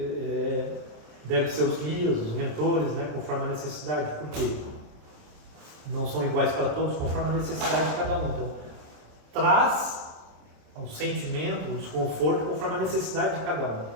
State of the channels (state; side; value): late; left; 27 ms